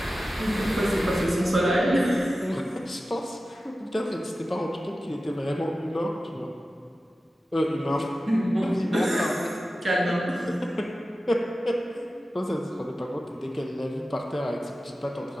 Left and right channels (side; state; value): both; normal; correlation 0.94